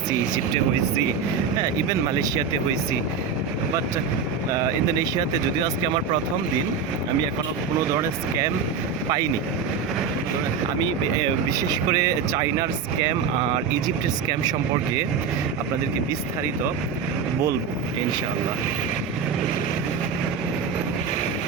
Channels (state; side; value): quieter; left; 6.0 dB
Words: ইজিপ্টে হয়েছি, হ্যাঁ, ইভেন মালয়েশিয়াতে হয়েছি। বাট ইন্দোনেশিয়াতে যদিও আজকে আমার প্রথম দিন, আমি এখনও কোনো ধরনের স্ক্যাম পাইনি। আমি বিশেষ করে চাইনার স্ক্যাম আর ইজিপ্টের স্ক্যাম সম্পর্কে আপনাদেরকে বিস্তারিত বলবো ইনশাআল্লাহ।